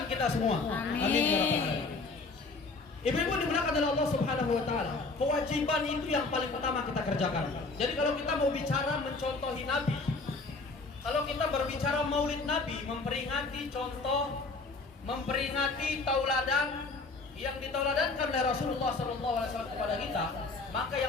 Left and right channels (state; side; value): quieter; right; 3.7 dB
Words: kita semua. Amin. Amin ya rabbal alamin. Ibu-ibu dimuliakan oleh Allah Subhanahu wa taala. Kewajiban itu yang paling utama kita kerjakan. Jadi kalau kita mau bicara mencontohi Nabi, kalau kita berbicara Maulid Nabi, memperingati contoh, memperingati tauladan yang ditauladankan oleh Rasulullah SAW kepada kita, maka